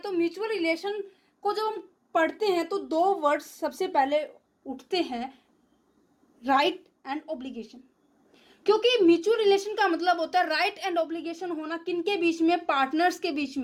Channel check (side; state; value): both; identical; correlation 1.00